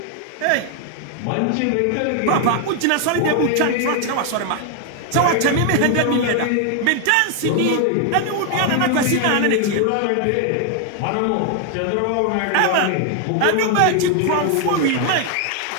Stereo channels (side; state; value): both; different; correlation 0.00